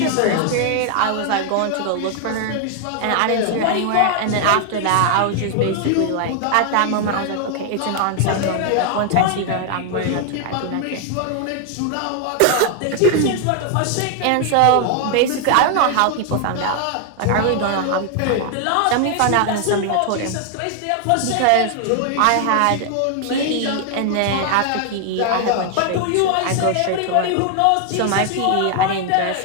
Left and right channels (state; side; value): different; both; correlation 0.00